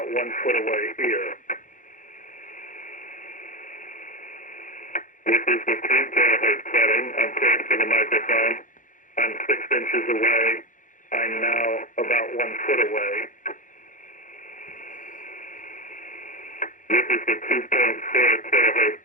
1 foot away here. This is the 3 kilohertz setting. I'm close to the microphone. I'm 6 inches away. I'm now about 1 foot away. This is the 2.4 kilohertz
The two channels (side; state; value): right; late; 0.38 ms